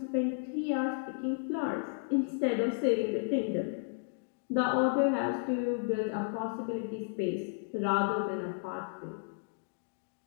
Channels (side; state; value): right; silent; digital silence